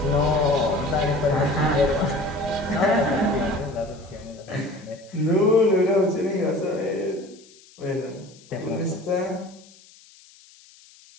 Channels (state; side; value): noise; left; hiss, 25 dB below the sound